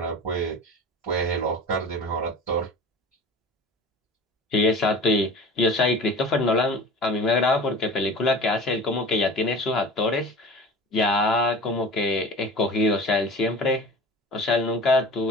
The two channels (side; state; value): both; normal; correlation 0.37